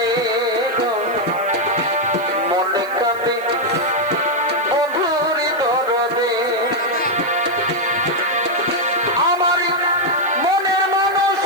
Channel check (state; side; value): noise; right; hiss, 23 dB below the sound